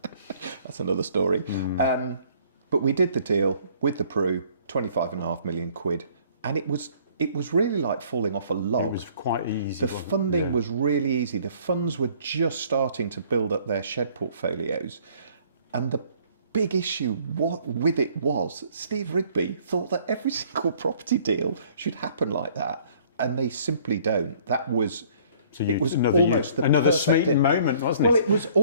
That's another story. But we did the deal with the Pru, 25.5 million quid, and it was really like falling off a log. It was quite easy. The wasn't it? funding Yeah. was really easy. The funds were just starting to build up their shed portfolios. And the big issue with it was Steve Rigby thought that every single property deal should happen like that. And they simply don't. It was almost the another perfect Smeaton deal. moment, wasn't it? Well, it was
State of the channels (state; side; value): inverted; both; correlation -0.58